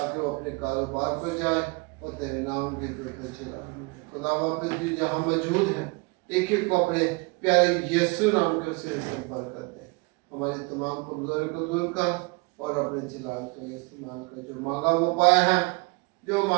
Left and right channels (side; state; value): left; quieter; 28.3 dB